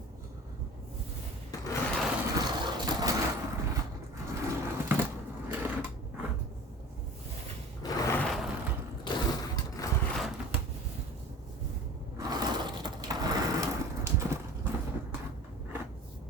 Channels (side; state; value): both; normal; correlation 0.41